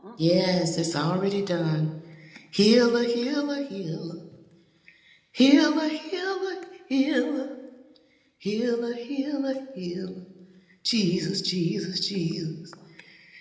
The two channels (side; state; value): both; identical; correlation 1.00